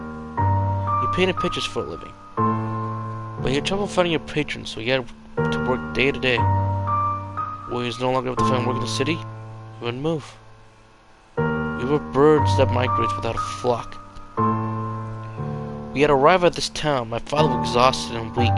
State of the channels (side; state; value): both; identical; correlation 1.00